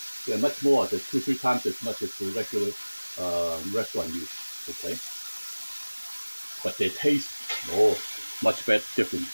They're much more. They're 2-3 times as much as the regular restaurant use. Okay. But they taste much better, different.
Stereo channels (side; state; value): both; inverted; correlation -1.00